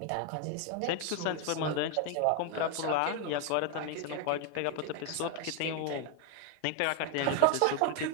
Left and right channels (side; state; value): both; different; correlation 0.00